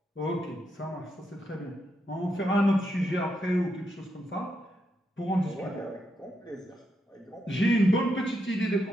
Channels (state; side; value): normal; both; correlation 0.82